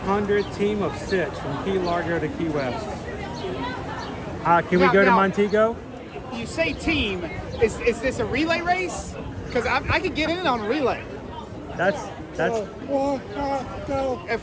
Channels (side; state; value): both; identical; correlation 1.00